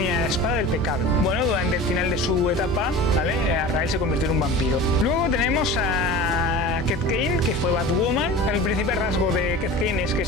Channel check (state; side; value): normal; both; correlation 0.35